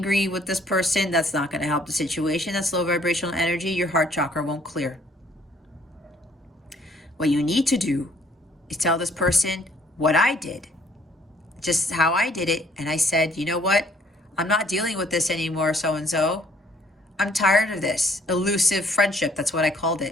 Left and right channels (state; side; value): normal; both; correlation 0.62